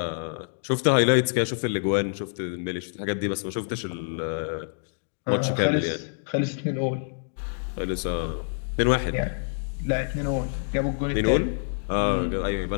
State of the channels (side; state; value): right; silent; digital silence